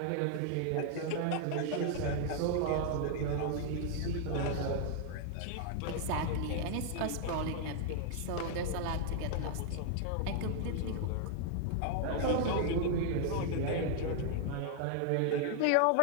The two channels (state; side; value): different; both; correlation 0.00